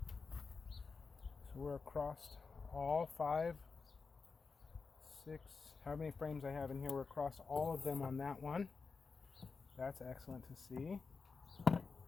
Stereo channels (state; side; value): quieter; right; 4.7 dB